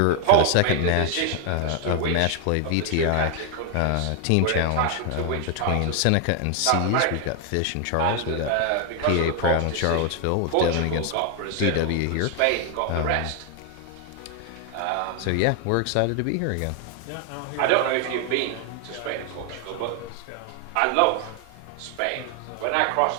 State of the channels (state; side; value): different; both; correlation 0.01